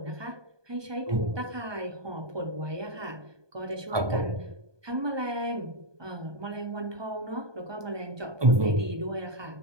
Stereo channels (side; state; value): left; late; 1.2 ms